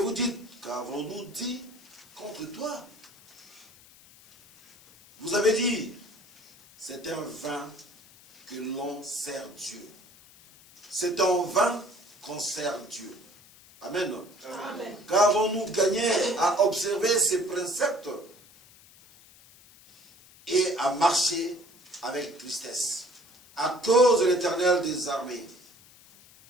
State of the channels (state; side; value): noise; left; hiss, 24 dB below the sound